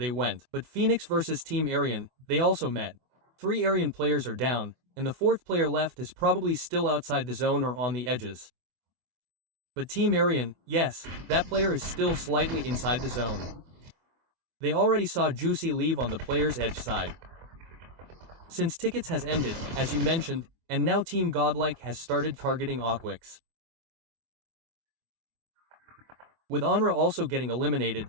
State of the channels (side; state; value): left; late; 24 ms